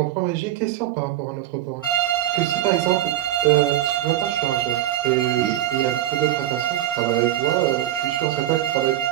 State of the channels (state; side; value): quieter; left; 13.2 dB